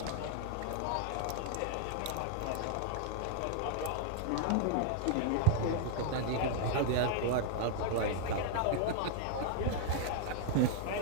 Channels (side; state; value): both; different; correlation 0.00